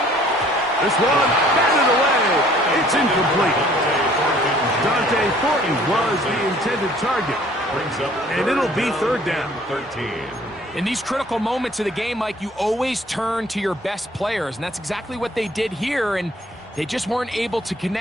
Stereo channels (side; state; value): both; normal; correlation 0.56